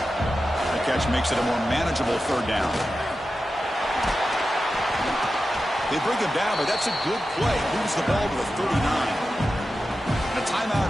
The catch makes it a more manageable third down. They bring him down, but that's a good play. Moves the ball to a 39. A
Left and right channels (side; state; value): both; normal; correlation 0.92